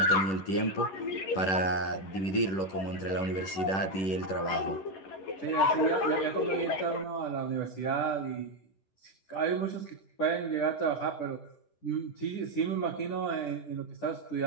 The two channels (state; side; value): late; right; 10 ms